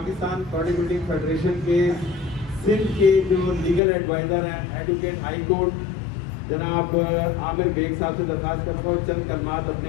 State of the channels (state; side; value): drops out; right; at 3.8 s